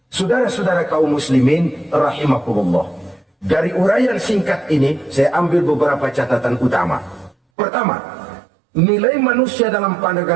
Saudara-saudara kaum muslimin, rahimakumullah. Dari uraian singkat ini, saya ambil beberapa catatan utama. Pertama, nilai manusia dalam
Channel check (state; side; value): drops out; left; at 7.4 s